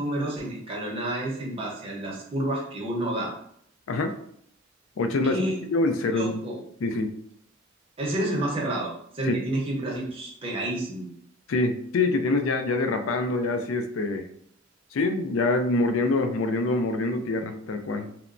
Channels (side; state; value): both; normal; correlation 0.36